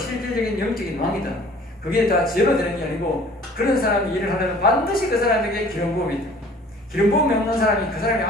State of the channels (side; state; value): both; normal; correlation 0.50